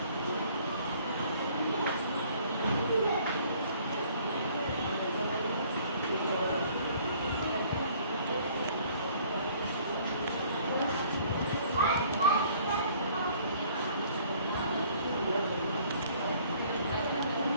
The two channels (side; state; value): both; inverted; correlation -0.57